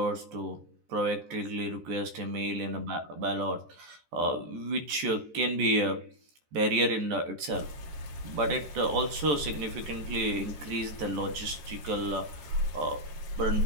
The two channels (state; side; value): late; left; 14 ms